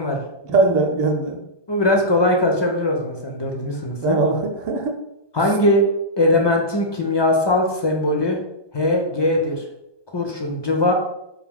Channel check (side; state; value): right; late; 1.2 ms